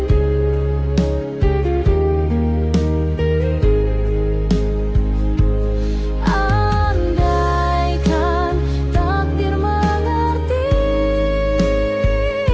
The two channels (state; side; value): identical; both; correlation 1.00